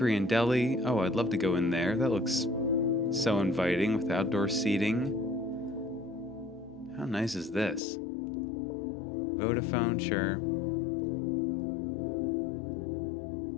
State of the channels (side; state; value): right; drops out; at 7.8 s